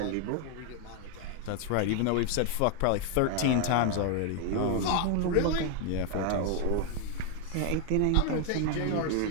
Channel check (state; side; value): different; both; correlation 0.00